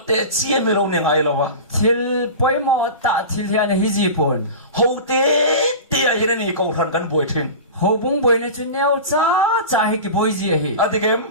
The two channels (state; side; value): inverted; both; correlation -0.31